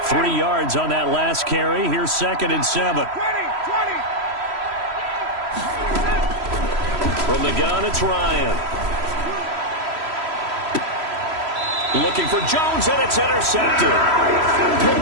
3 yards on that last carry. Here's 2nd and 7. From the gun, it's Ryan. Looking for Jones, and it's intercepted.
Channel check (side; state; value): left; late; 3.0 ms